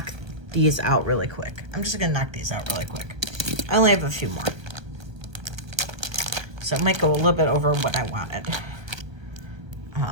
these out really quick. I'm just going to knock these out really quick. I only have a few more. So it might go a little bit over what I wanted.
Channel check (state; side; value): late; left; 1.1 ms